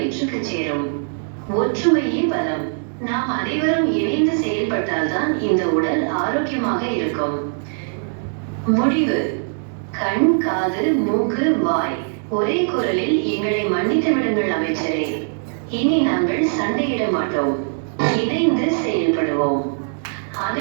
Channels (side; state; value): left; silent; 65 dB below the other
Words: சேரும். ஒற்றுமையே பலம். நாம் அனைவரும் இணைந்து செயல்பட்டால்தான் இந்த உடல் ஆரோக்கியமாக இருக்கும். முடிவு: கண், காது, மூக்கு, வாய் ஒரே குரலில் எங்களை மன்னித்து விடுங்கள் அமைச்சரே. இனி நாங்கள் சண்டையிட மாட்டோம். இணைந்து செயல்படுவோம்.